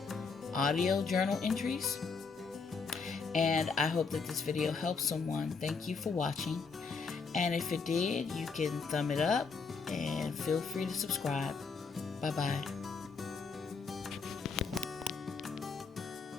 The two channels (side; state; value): right; quieter; 5.0 dB